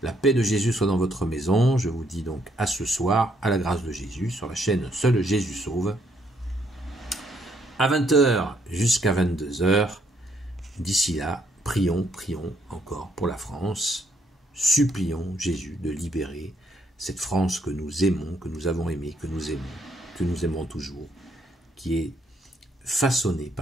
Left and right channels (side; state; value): both; normal; correlation 0.71